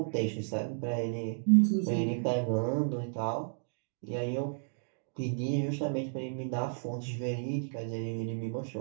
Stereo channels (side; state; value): left; silent; digital silence